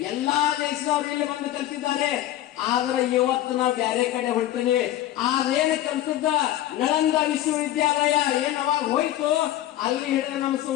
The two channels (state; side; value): quieter; right; 13.5 dB